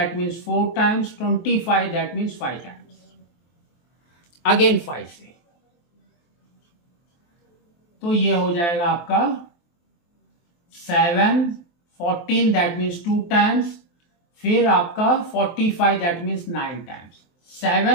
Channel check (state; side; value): late; right; 23 ms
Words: means 4 times, 25 that means 5 times, again 5 से, तो ये हो जाएगा आपका 7, 14 दैट मीन्स 2 टाइम्स, फिर आपका 45 दैट मीन्स 9 टाइम्स,